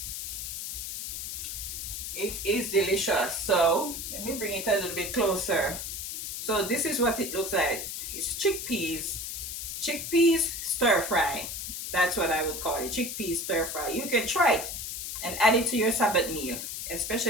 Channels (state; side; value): noise; left; hiss, 6 dB below the sound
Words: It is delicious. So, let me bring it a little bit closer. So, this is what it looks like. It's chickpeas. Chickpeas stir fry. That's what I would call it. Chickpeas stir fry. You can try it and add it to your Sabbath meal,